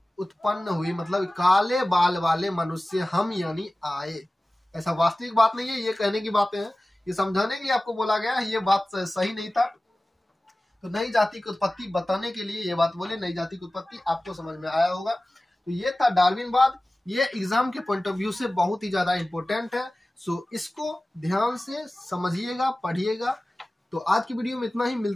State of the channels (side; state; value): both; normal; correlation 0.97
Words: उत्पन्न हुई। मतलब काले बाल वाले मनुष्य हम यानी आए। ऐसा वास्तविक बात नहीं है, ये कहने की बातें हैं, ये समझाने के लिए आपको बोला गया है, ये बात सही नहीं था। तो नई जाति की उत्पत्ति बताने के लिए ये बात बोले। नई जाति की उत्पत्ति आपको समझ में आया होगा। तो ये था डार्विनवाद। ये एग्जाम के पॉइंट ऑफ व्यू से बहुत ही ज्यादा इंपॉर्टेंट है। सो इसको ध्यान से समझिएगा, पढ़िएगा। तो आज की वीडियो में इतना ही,